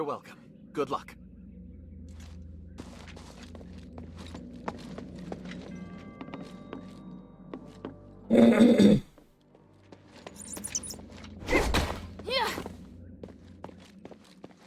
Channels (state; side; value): identical; both; correlation 1.00